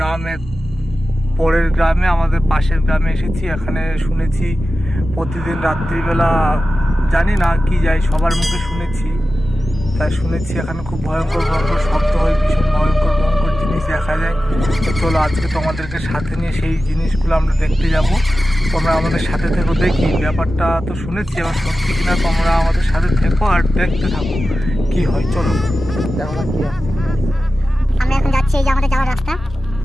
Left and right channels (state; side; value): normal; both; correlation 0.94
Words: পরের গ্রামে, আমাদের পাশের গ্রামে এসেছি। এখানে শুনেছি প্রতিদিন রাত্রিবেলা, জানি না কি যাই, সবার মুখে শুনেছি, তাই শুনেছি এখানে খুব ভয়ঙ্কর ভয়ঙ্কর শব্দ হয়, ভীষণ ভয়ঙ্কর ভয়ঙ্কর জিনিস দেখা যায়। তো চলো আজকে তোমাদেরকে সাথে নিয়ে সেই জিনিসগুলো আমরা দেখতে যাব। তোমরা আমাদের সাথে থেকো, দেখি ব্যাপারটা তো শুনেছি, এবার সত্যি কিনা তোমরা আমাদের সাথে থেকো আর দেখতে থাকো কি হয়। চলো আমরা এখন যাচ্ছি, এই যে আমাদের যাওয়ার রাস্তা।